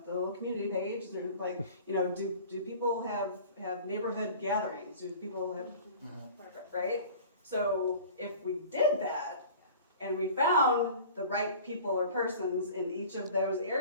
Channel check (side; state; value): both; inverted; correlation -0.42